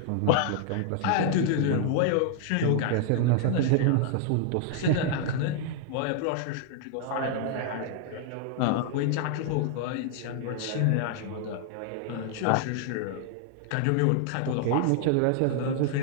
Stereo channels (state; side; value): different; both; correlation -0.01